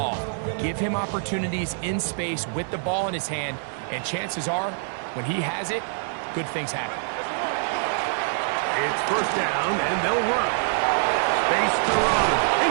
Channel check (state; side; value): silent; left; 59 dB below the other